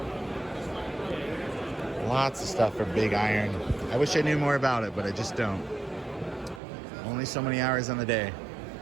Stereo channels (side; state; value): left; drops out; at 6.6 s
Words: Lots of stuff for big iron. I wish I knew more about it, but I just don't. Only so many hours in the day.